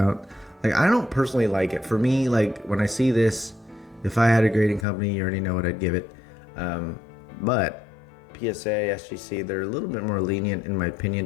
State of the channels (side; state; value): right; drops out; at 4.9 s